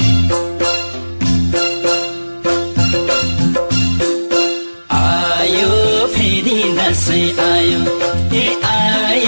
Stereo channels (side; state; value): both; inverted; correlation -1.00